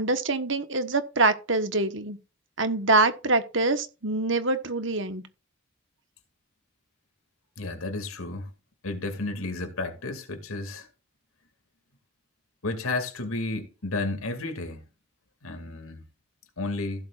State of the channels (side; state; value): both; normal; correlation -0.13